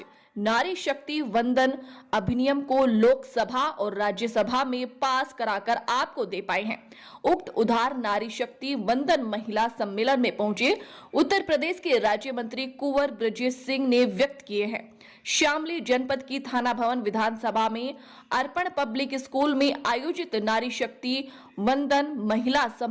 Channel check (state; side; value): identical; both; correlation 1.00